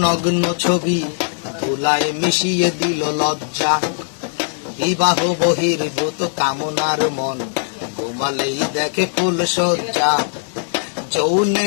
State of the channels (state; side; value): silent; right; digital silence